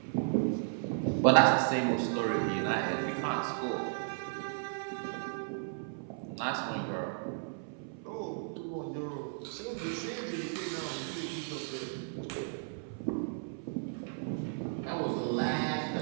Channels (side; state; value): left; silent; 55 dB below the other